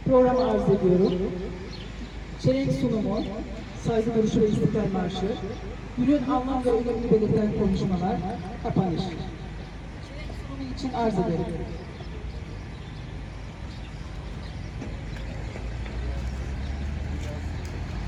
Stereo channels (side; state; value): both; identical; correlation 1.00